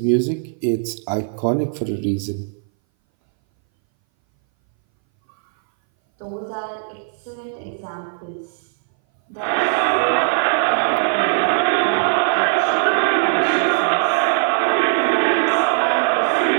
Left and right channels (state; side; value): silent; left; 61 dB below the other